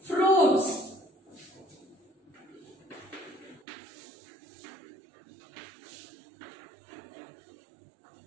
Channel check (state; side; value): drops out; left; at 3.6 s